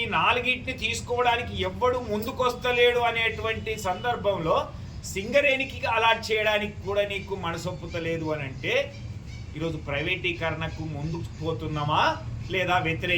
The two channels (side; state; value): both; identical; correlation 1.00